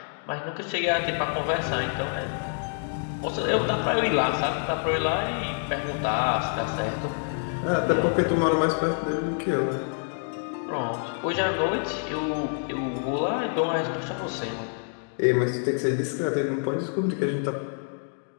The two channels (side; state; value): right; silent; 60 dB below the other